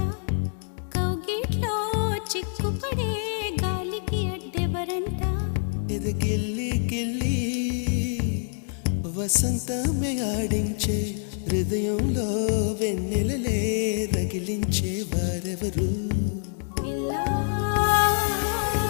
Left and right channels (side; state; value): right; silent; 59 dB below the other